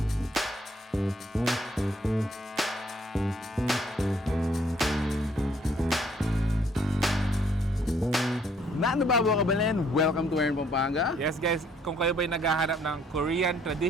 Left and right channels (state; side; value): normal; both; correlation 0.64